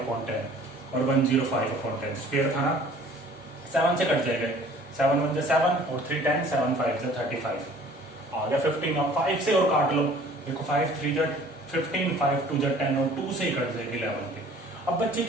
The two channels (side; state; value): both; normal; correlation 0.51